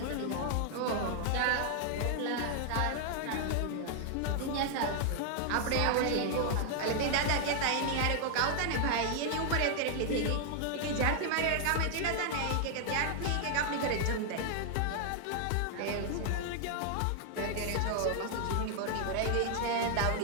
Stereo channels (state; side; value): different; both; correlation 0.00